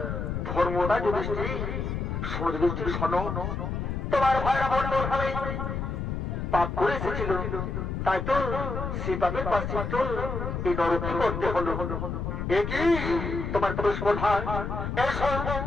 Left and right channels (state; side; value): noise; left; rumble, 3 dB below the sound